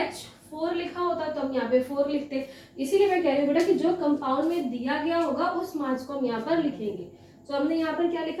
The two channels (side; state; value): both; identical; correlation 1.00